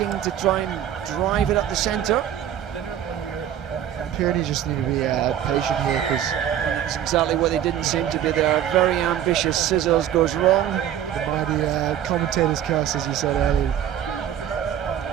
to try and drive it up the centre. Pyrenees just need to be patient here, because that's exactly what they didn't seem to be. They're very ambitious. Scissors goes wrong. The mighty commentator's curse, as you said earlier.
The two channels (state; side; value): quieter; left; 10.4 dB